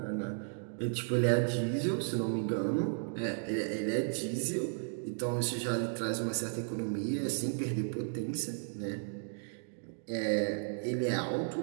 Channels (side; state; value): left; silent; digital silence